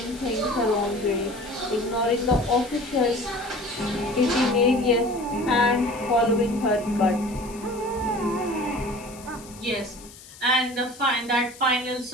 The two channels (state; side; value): noise; left; hiss, 19 dB below the sound